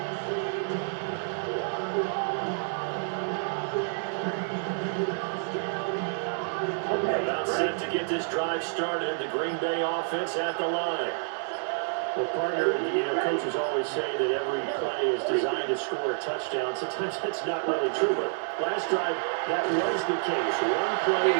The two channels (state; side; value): silent; left; 59 dB below the other